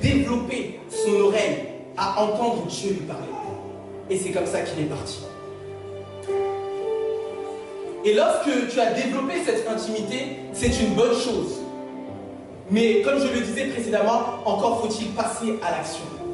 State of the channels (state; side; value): identical; both; correlation 1.00